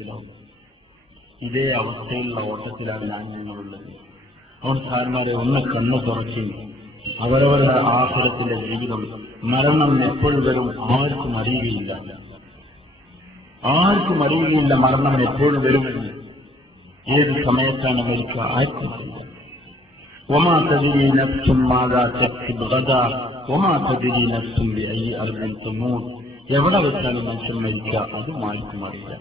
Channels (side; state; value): both; normal; correlation 0.62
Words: ഇതേ അവസ്ഥയിലുള്ള ഓട്ടത്തിലാണ് നിങ്ങളുള്ളത്. സാരന്മാരെ ഒന്ന് കണ്ണു തുറച്ച് അവരവരുടെ ആഹ്ലത്തിന്റെ ജീവിതം, മരണം എപ്പോഴും വരും ആർക്കും അറിയുകയില്ല. മരണം എപ്പോഴും വരുമെന്ന്. ഏത് സമയത്താണ് മരിക്കുക ആർക്കും അറിയില്ല. وما تدري نفس ماذا تكسب غدا وما تدري نفس بأي أرض تموت. എവിടെ വെച്ചാണ് മനുഷ്യൻ മരിക്കുക അതും ആർക്കും അറിയില്ല.